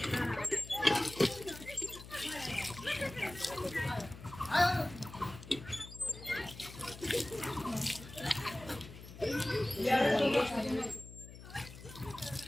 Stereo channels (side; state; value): left; noise; hum, 15 dB below the sound